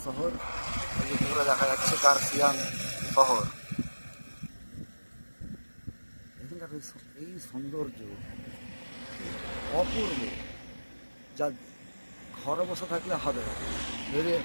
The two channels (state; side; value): inverted; both; correlation -1.00